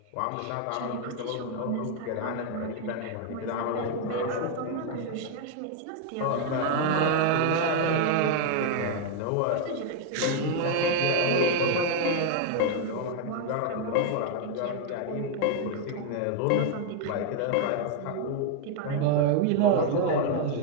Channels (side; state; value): both; different; correlation 0.00